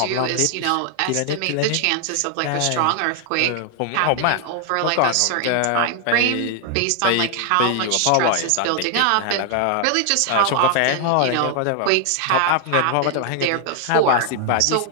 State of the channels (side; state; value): both; different; correlation 0.00